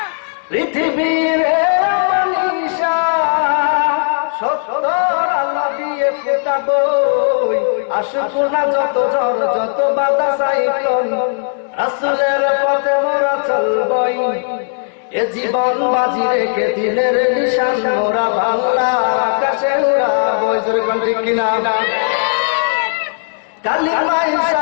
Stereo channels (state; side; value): silent; right; digital silence